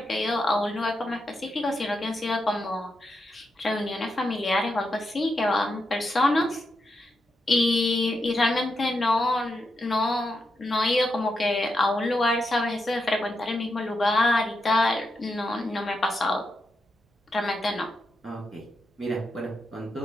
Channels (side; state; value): both; normal; correlation 0.85